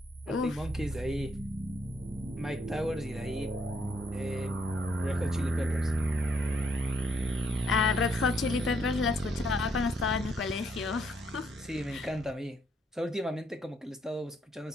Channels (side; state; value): both; normal; correlation 0.72